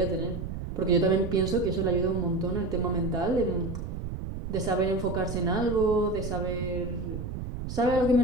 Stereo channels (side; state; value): right; noise; rumble, 6 dB below the sound